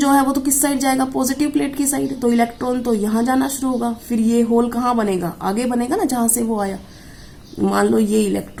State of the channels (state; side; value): identical; both; correlation 1.00